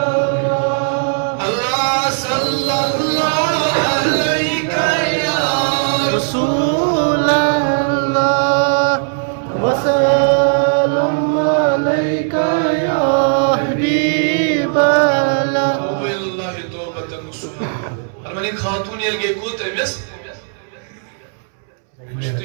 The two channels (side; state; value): left; silent; 68 dB below the other